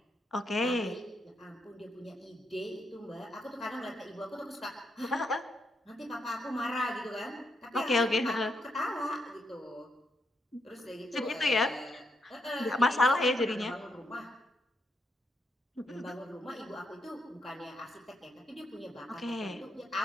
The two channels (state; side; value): normal; both; correlation 0.79